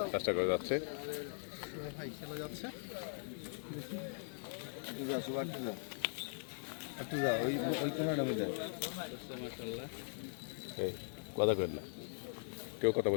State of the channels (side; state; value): right; silent; digital silence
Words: চেষ্টা করে যাচ্ছে। কথা করেন না, কেউ কথা